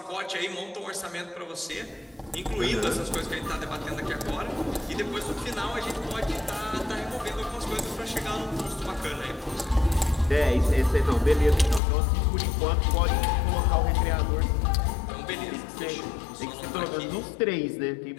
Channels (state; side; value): drops out; right; at 11.8 s